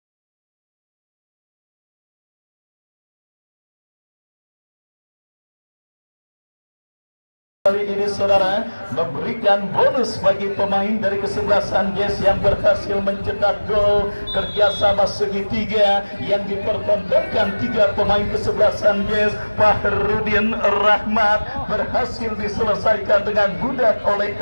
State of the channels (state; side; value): inverted; both; correlation -1.00